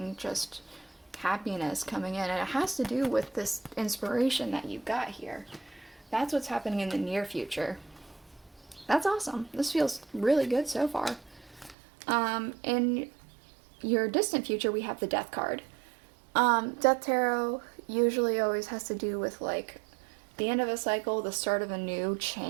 just happiness coming in. And it has to do with this inspiration that you've got here. That's what's happening in the near future. That's awesome. This feels really good so far. In your distant future, we have the Death card. Death Tarot usually always has to do with, like, the end of a cycle, the start of a new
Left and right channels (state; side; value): drops out; left; at 11.8 s